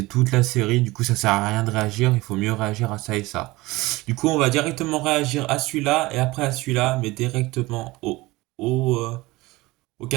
toute la série. Du coup, ça sert à rien de réagir. Il faut mieux réagir à ça et ça. Du coup, on va directement réagir à celui-là et après à celui-là, mais directement au, euh, au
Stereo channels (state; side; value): quieter; left; 20.7 dB